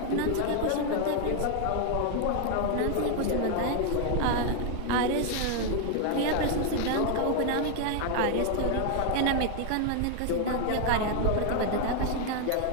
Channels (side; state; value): both; different; correlation 0.00